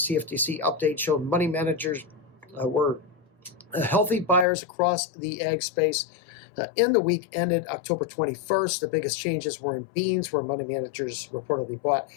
CFTC update showed money managers were healthy buyers across the ag space. In the week ended October 21st, the biggest changes were in beans, where money managers reportedly bought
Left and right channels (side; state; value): right; drops out; at 4.5 s